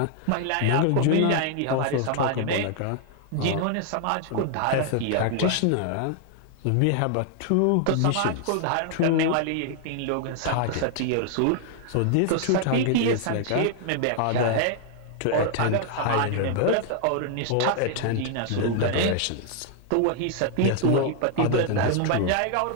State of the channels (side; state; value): both; different; correlation 0.00